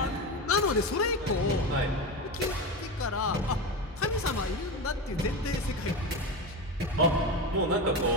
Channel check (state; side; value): normal; both; correlation 0.20